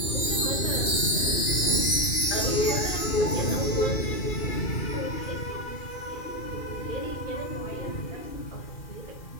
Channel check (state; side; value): late; right; 2.4 ms